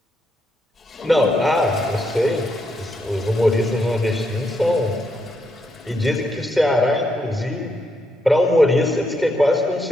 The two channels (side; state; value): both; normal; correlation 0.79